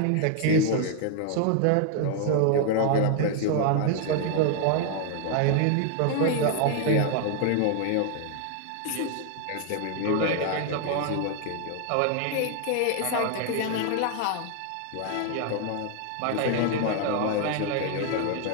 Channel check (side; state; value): both; different; correlation 0.00